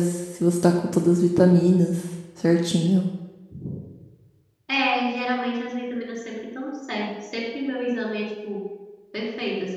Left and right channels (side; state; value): both; identical; correlation 1.00